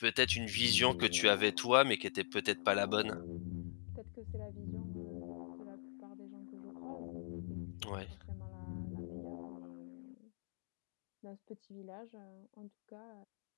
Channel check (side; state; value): right; silent; digital silence